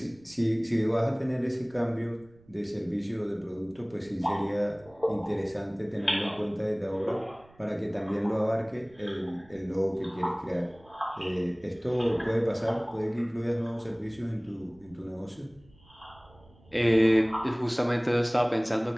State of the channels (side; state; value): right; noise; rumble, 27 dB below the sound